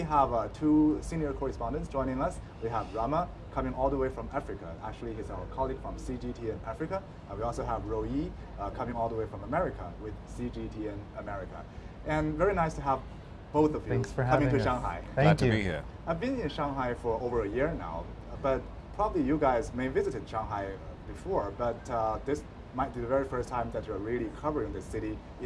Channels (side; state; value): both; identical; correlation 1.00